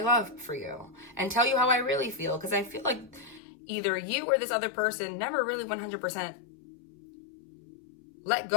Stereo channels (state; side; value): drops out; right; at 3.4 s